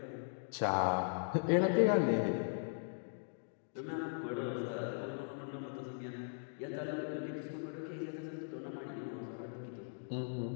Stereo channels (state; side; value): silent; right; digital silence